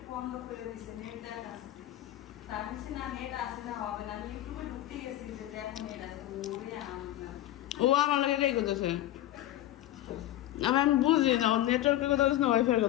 ও আমার লাগে রেগে করতেছে আমি বুঝি না নেটওয়ার্কের কথা বলছে না ওয়াইফাই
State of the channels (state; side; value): quieter; right; 14.1 dB